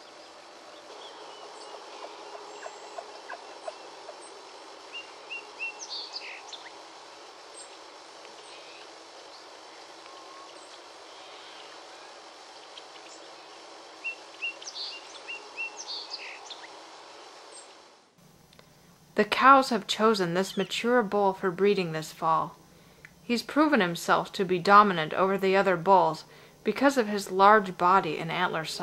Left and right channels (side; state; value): both; identical; correlation 1.00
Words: The cows have chosen this mature bull for breeding this fall. He's proven himself to be dominant over the other bulls because of his large body and antler